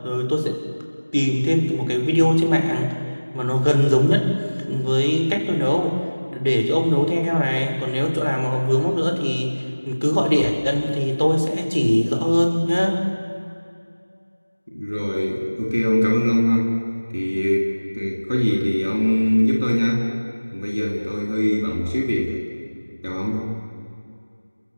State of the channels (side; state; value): both; inverted; correlation -1.00